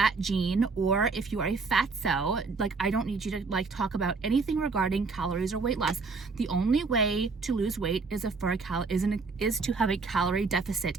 gene, or if you are a fatso, like, I don't need you to like talk about anything regarding calories or weight loss. The only way to lose weight is to have a calorie deficit.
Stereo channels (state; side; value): quieter; left; 4.3 dB